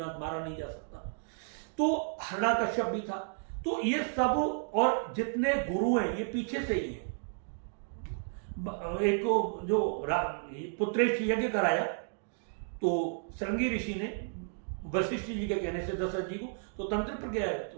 मारा नहीं जा सकता। तो हिरण्यकश्यप भी था। तो ये सब और जितने गुरु हैं ये पीछे से ही हैं। एक जो पुत्रेश यज्ञ कराया, तो श्रृंगी ऋषि ने वशिष्ठ जी के कहने से दशरथ जी को तो तंत्र पर गया है,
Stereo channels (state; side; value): silent; left; digital silence